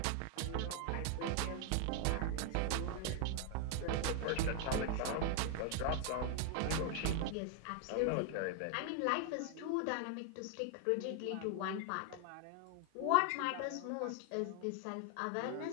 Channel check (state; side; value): different; both; correlation 0.00